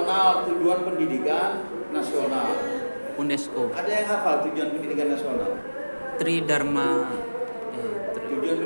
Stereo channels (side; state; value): both; inverted; correlation -1.00